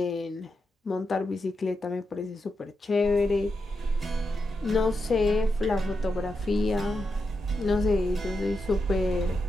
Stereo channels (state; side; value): normal; both; correlation 0.86